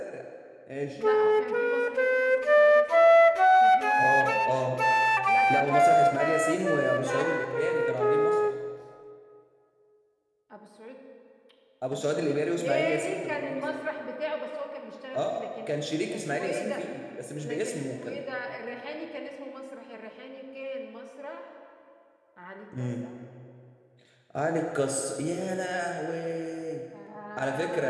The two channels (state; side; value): identical; both; correlation 1.00